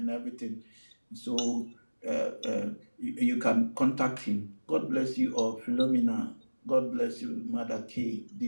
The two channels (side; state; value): both; inverted; correlation -1.00